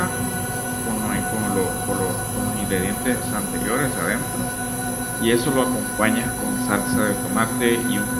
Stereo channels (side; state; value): both; identical; correlation 1.00